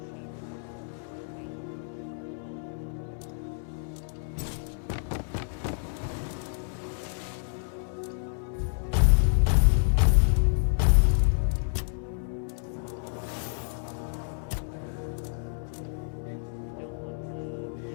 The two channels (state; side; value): silent; right; digital silence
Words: weight-wise, so I'll hold on to it for now. Also, I really don't need this anymore, but I'm just gonna hold on to it just because. I don't want the...